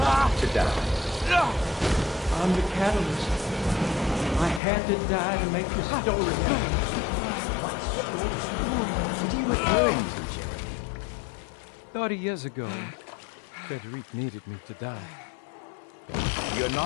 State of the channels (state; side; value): drops out; right; at 4.6 s